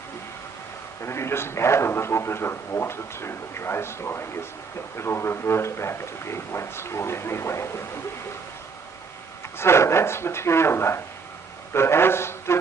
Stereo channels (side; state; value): left; quieter; 5.1 dB